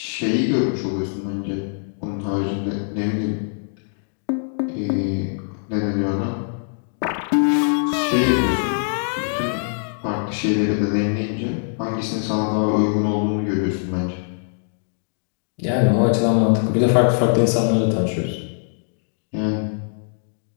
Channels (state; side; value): silent; right; digital silence